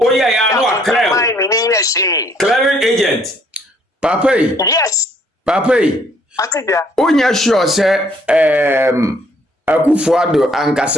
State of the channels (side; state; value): both; normal; correlation 0.65